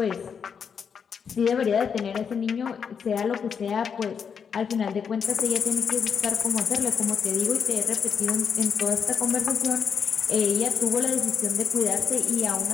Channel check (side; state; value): right; quieter; 6.7 dB